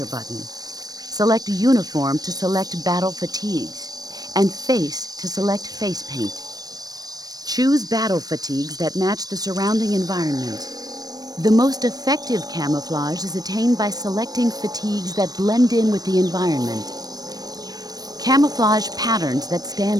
button. Select Uniform to select Battle Fatigues, and Face to select Face Paint. Choose battle fatigues that match the surrounding environment. The most effective camouflage is attained by selecting fatigues that blend in with the environment. Camouflage patterns that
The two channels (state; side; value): late; left; 0.19 ms